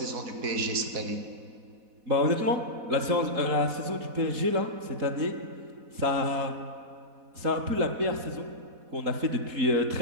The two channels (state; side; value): late; left; 4.1 ms